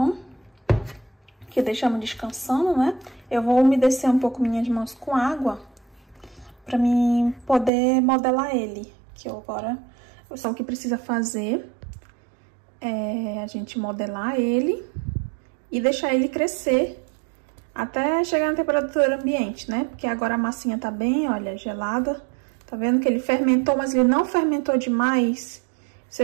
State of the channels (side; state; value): left; drops out; at 7.7 s